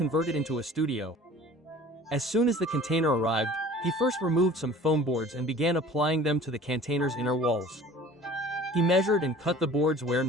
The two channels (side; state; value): both; normal; correlation 0.46